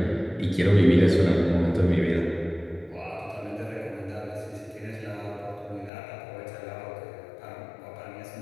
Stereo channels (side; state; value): right; drops out; at 5.9 s